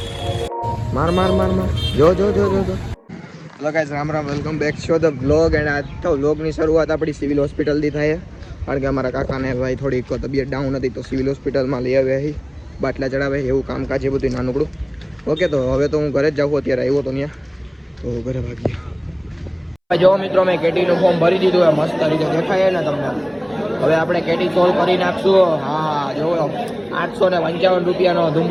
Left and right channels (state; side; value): identical; both; correlation 1.00